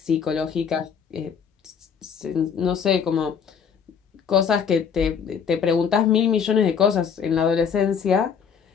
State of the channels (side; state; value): right; quieter; 6.9 dB